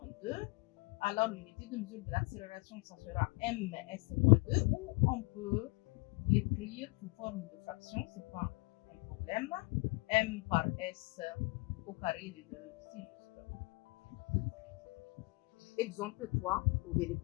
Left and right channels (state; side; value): quieter; right; 26.4 dB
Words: 2. Alors, l'unité de mesure de l'accélération, ça sera ms-2, ou on peut l'écrire sous forme de fraction, ce n'est pas un problème. M par S au carré des deux, c'est juste. Exemple 3, trouver